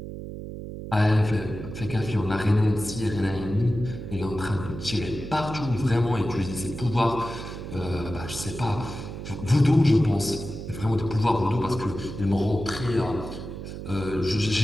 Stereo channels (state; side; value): noise; right; hum, 9 dB below the sound